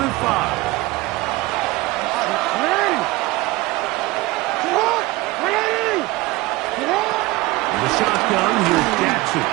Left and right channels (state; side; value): quieter; left; 20.4 dB